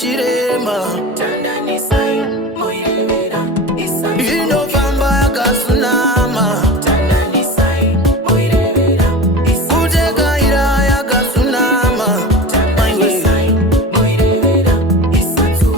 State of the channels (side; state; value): both; normal; correlation 0.32